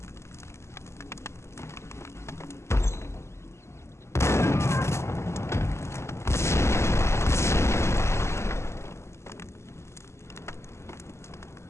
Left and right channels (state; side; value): late; right; 0.13 ms